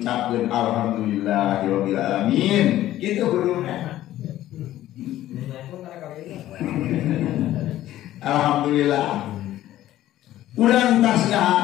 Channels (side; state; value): right; quieter; 13.9 dB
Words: alhamdulillahirabbil alamin gitu guruna. Alhamdulillah urang